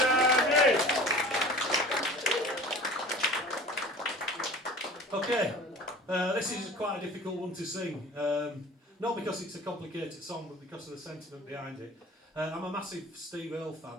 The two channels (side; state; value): both; normal; correlation 0.41